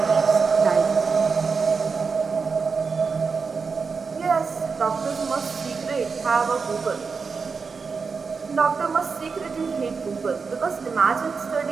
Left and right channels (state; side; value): quieter; left; 5.1 dB